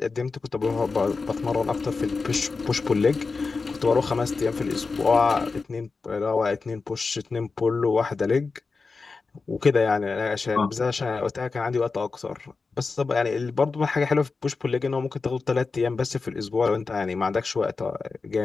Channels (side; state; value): right; quieter; 4.3 dB